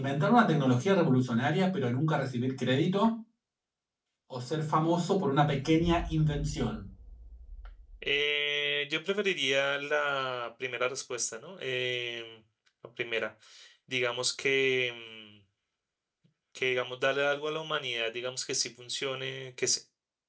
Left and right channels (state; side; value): identical; both; correlation 1.00